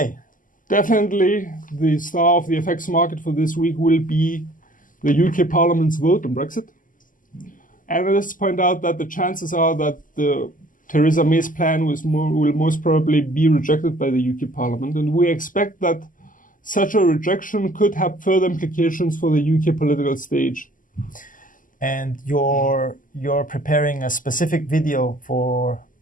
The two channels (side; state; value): right; late; 0.38 ms